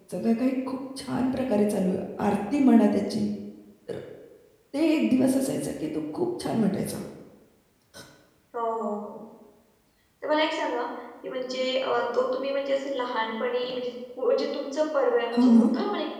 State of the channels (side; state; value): both; identical; correlation 1.00